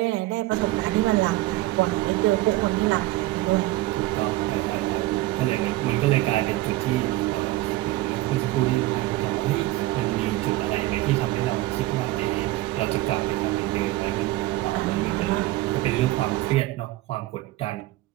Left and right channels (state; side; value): quieter; left; 17.6 dB